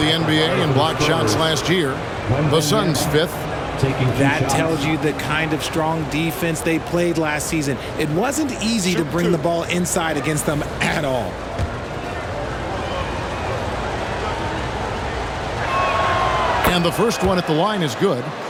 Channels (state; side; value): identical; both; correlation 1.00